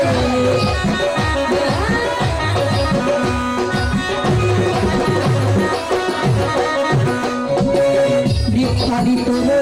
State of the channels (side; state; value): both; identical; correlation 1.00